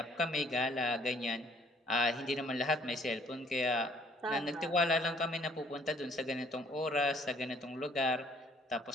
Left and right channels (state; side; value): normal; both; correlation 0.60